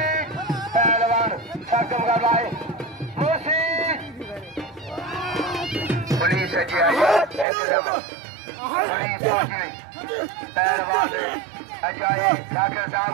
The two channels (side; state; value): left; drops out; at 7.5 s